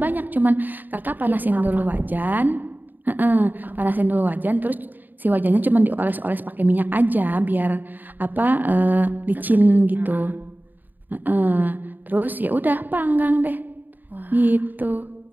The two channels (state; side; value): late; left; 0.088 ms